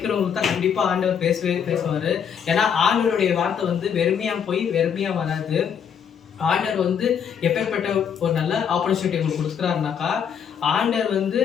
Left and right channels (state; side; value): quieter; right; 7.7 dB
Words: தான் கண்டிப்பா ஆண்டவர் பேசுவாரு. ஏன்னா ஆண்டவருடைய வார்த்தை வெறுமையா போய் வெறுமையா வராது. ஆண்டவர் எப்பேற்பட்ட ஒரு நல்ல ஆப்பர்ச்சுனிட்டி உங்களுக்கு கொடுக்குறாருனாக்கா, ஆண்டவர்